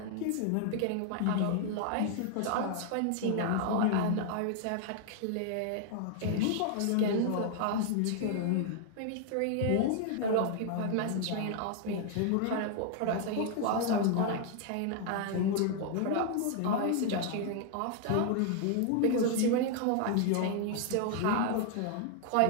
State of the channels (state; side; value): different; both; correlation 0.00